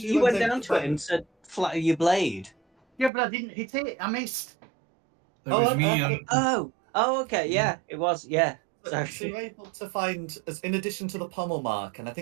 went able down to it find- and said, "Flatter your blade." Yeah, but I didn't hit it. I missed. It Oh, was okay. me and Okay, yeah, it was, yeah. So Sorry. you're able to find, in addition to the pommel mark, and I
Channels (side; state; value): left; drops out; at 3.1 s